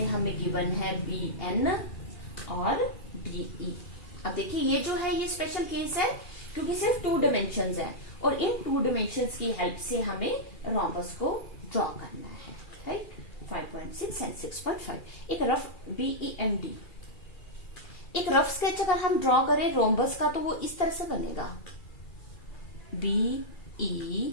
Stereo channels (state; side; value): late; right; 2.4 ms